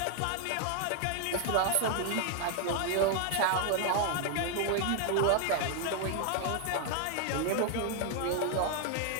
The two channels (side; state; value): both; different; correlation 0.00